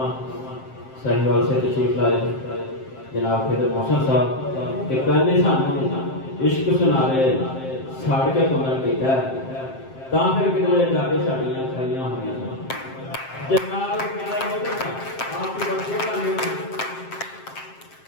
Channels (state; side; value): late; right; 7.6 ms